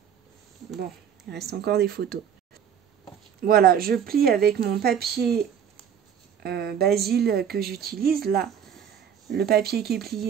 Bon, il reste encore des photos. Voilà, je plie avec mon papier Basile que j'utilise. Là, le papier qui est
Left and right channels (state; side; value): quieter; left; 8.4 dB